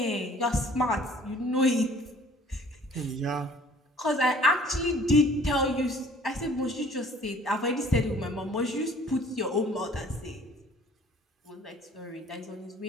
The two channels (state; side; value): normal; both; correlation 0.53